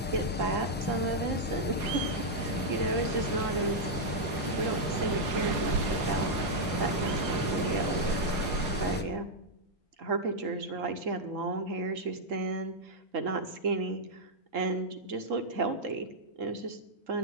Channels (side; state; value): both; normal; correlation -0.03